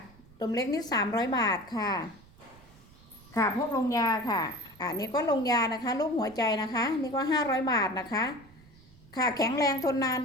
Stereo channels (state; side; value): noise; right; rumble, 25 dB below the sound